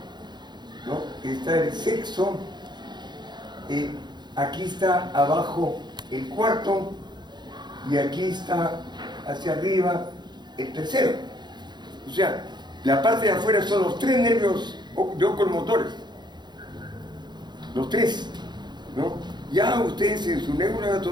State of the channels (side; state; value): left; late; 0.21 ms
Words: ¿no? Está el sexo, aquí está abajo el cuarto y aquí está hacia arriba el tercero. O sea, la parte de afuera son los tres nervios de oculomotores. Los tres, ¿no? Ya ustedes en su